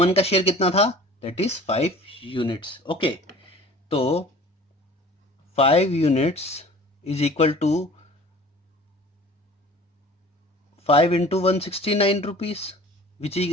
का शेयर कितना था, दैट इज 5 यूनिट्स। ओके, तो 5 units is equal to 5 into 169 rupees, which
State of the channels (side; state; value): both; normal; correlation 0.45